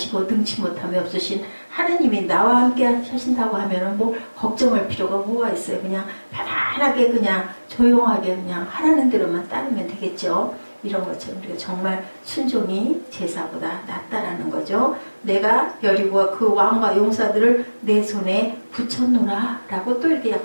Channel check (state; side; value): inverted; both; correlation -1.00